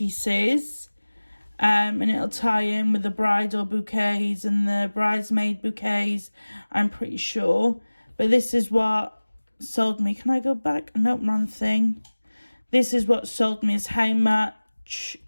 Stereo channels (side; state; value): both; inverted; correlation -1.00